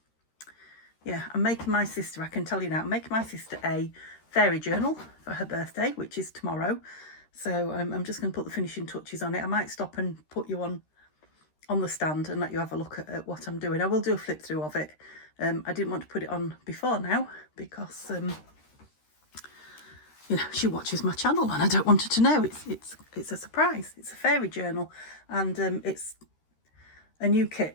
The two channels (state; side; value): late; right; 13 ms